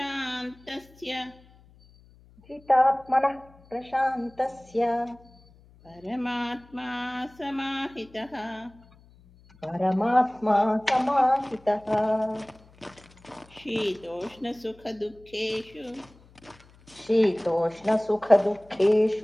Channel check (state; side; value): noise; left; hum, 27 dB below the sound